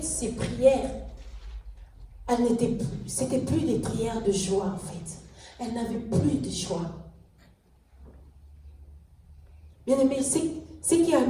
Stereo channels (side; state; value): both; identical; correlation 1.00